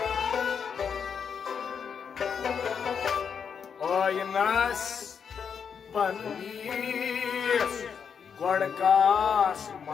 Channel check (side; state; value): right; quieter; 6.8 dB